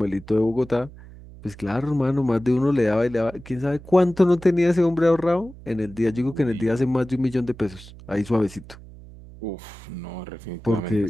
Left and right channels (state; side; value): noise; right; hum, 18 dB below the sound